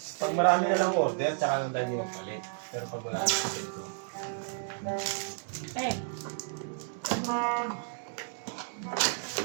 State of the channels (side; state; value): left; silent; digital silence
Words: Pag marami na lang order, tsaka lang tayo magpalit. Pero pag wala na ito. Eh.